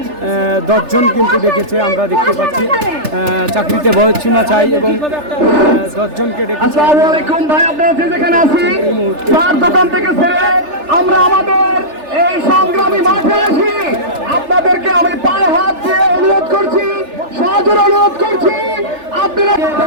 10 জন কিন্তু ডেকেছে, আমরা দেখতে পাচ্ছি চাকরিতে বয়সসীমা চাই এবং 10 জনকে ডেকেছে। আসসালামু আলাইকুম ভাই, আপনারা যেখানে আছি চার দোকান থেকে ছেড়ে আমরা আমাদের এই সংগ্রামী মাঠে আসি। আপনাদেরকে আমি পায়ে হাত দিয়ে অনুরোধ করছি, সজোর অনুরোধ করছি আপনারা।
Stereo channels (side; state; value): left; late; 3.4 ms